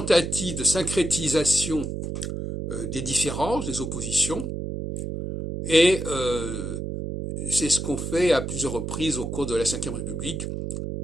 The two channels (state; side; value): noise; right; hum, 4 dB below the sound